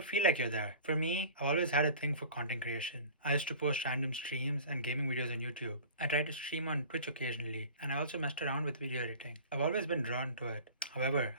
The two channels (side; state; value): both; inverted; correlation -0.41